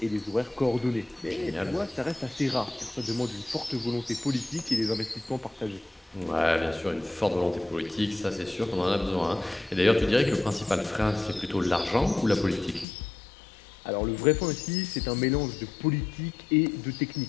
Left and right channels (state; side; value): drops out; right; at 12.9 s